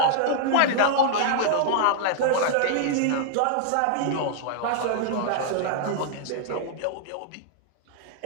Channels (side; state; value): both; different; correlation -0.01